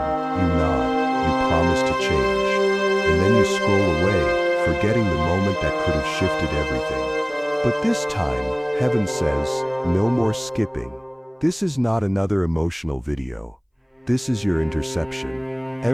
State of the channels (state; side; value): identical; both; correlation 1.00